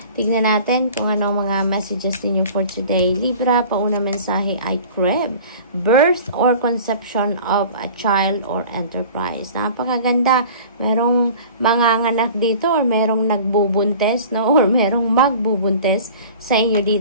Tignan natin kung ano mga messages ninyo for today. Libra, pauna mensahe ay crib. Birth or conception of a child or enterprise. Napakaganda. Merong manganganak dito or merong nagbubuntes, no? Or merong magbubuntes sa inyo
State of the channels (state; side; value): inverted; both; correlation -0.43